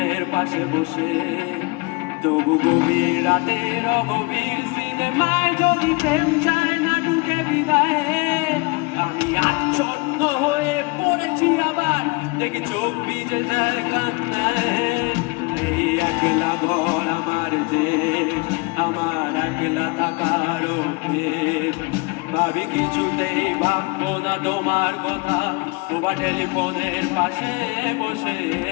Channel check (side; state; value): right; quieter; 27.3 dB